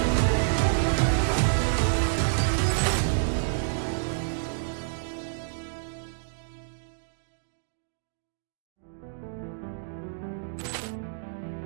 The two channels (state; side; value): silent; left; digital silence